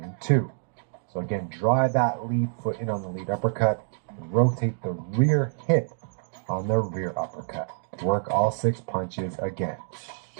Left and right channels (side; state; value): left; silent; digital silence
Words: and 2. So again, drive that lead foot in on the lead uppercut and rotate the rear hip on the rear uppercut. Work all 6 punches again.